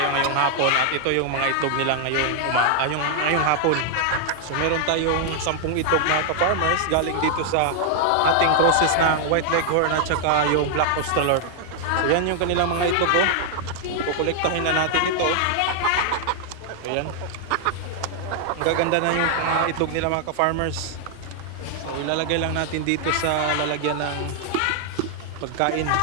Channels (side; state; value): both; different; correlation 0.00